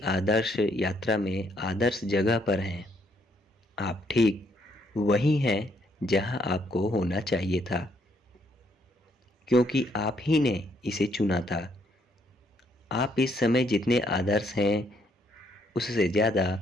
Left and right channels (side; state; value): both; normal; correlation 0.71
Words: आदर्श यात्रा में आदर्श जगह पर हैं। आप ठीक वहीं हैं जहां आपको होना चाहिए था, क्योंकि आप ही ने इसे चुना था। आप इस समय जितने आदर्श हैं उससे ज़्यादा